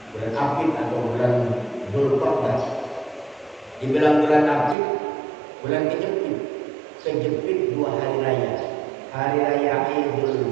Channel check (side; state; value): left; drops out; at 4.8 s